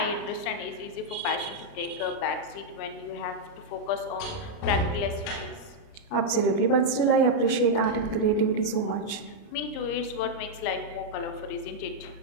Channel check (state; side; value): late; right; 29 ms